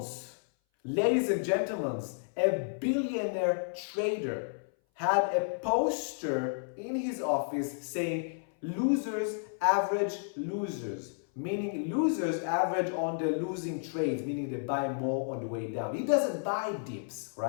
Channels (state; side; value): silent; right; 57 dB below the other